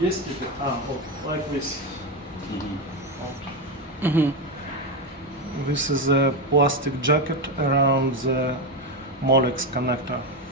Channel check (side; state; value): both; normal; correlation 0.11